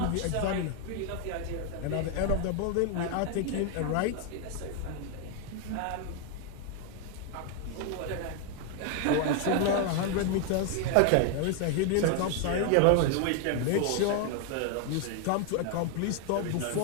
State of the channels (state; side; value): different; both; correlation 0.01